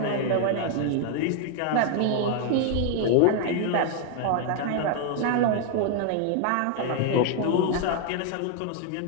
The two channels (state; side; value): different; both; correlation 0.00